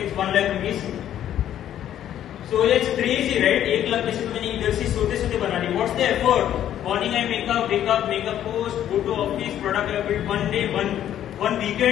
it's 1 lakh rupees. So it's crazy, right? 1 lakh पैसे तो मैंने इधर से सोते बना ली. What's the effort? Morning I wake up, make a post, go to office, product I built one day, one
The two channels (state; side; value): quieter; right; 11.1 dB